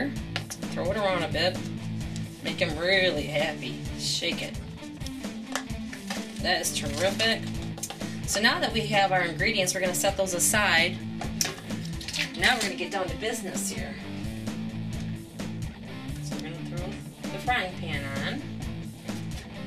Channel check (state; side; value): identical; both; correlation 1.00